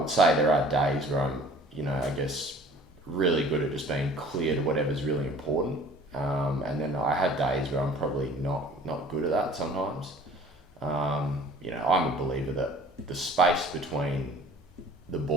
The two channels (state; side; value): normal; both; correlation 0.49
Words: say there are days where I'm, you know, I guess really good at just being clear to whatever's really important. And then I have days where I'm probably not good at that sometimes. You know, I'm a believer that the space between the